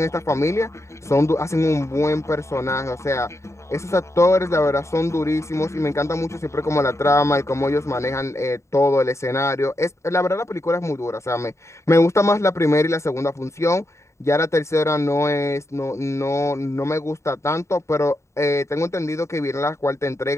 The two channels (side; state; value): right; late; 0.14 ms